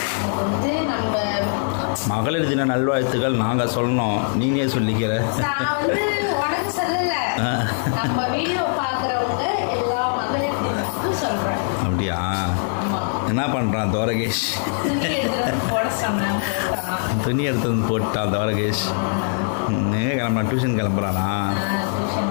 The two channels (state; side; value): silent; right; 58 dB below the other